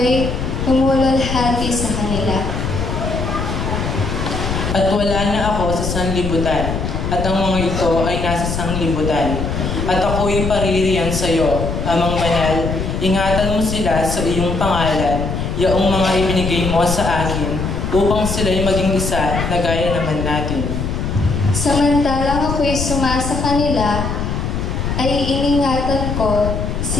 humululhati sa kanila. At wala na ako sa sanlibutan, at ang mga ito ay nasa sanglibutan. At ako'y paririyan sa iyo, Amang Banal, ingatan mo sila sa iyong pangalan, yaong mga ibinigay mo sa akin, upang sila'y maging isa na gaya naman natin. Samantalang ako'y sumasa kanila, ay iningatan ko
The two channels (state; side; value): noise; left; rumble, 3 dB below the sound